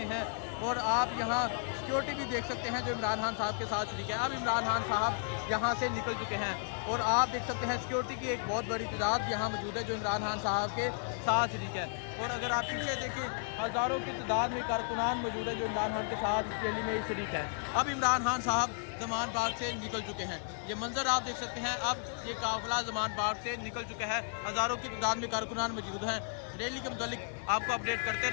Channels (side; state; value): right; silent; 55 dB below the other